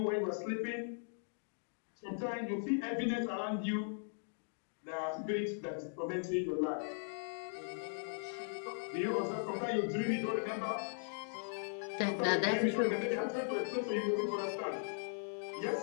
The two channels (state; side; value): silent; right; digital silence